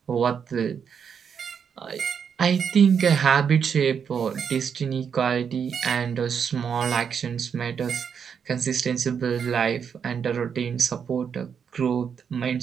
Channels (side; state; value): left; quieter; 7.1 dB